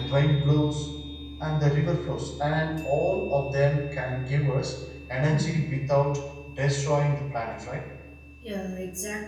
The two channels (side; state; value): both; identical; correlation 1.00